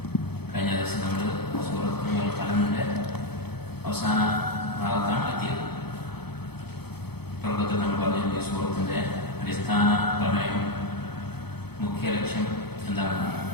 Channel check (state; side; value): late; right; 0.97 ms